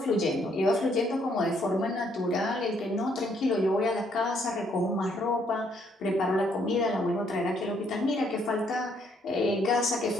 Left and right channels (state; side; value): normal; both; correlation 0.69